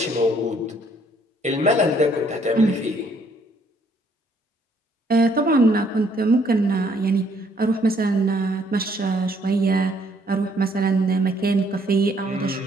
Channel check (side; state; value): both; normal; correlation 0.66